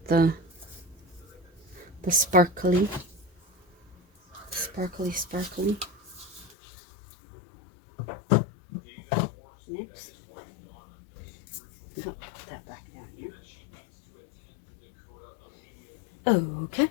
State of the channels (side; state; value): right; drops out; at 6.6 s